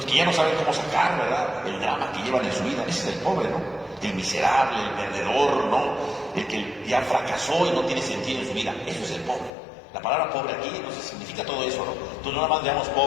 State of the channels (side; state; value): right; drops out; at 9.5 s